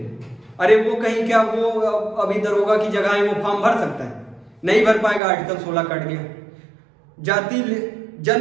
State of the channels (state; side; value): drops out; left; at 5.2 s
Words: अरे वो कहीं क्या, वो अभी दरोगा की जगह है, वो फॉर्म भर सकता है? नहीं भर पाएगा, आर्टिकल 16 कट गया। जाति,